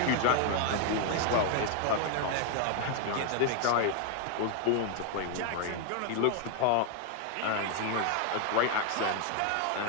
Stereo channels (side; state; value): both; different; correlation 0.00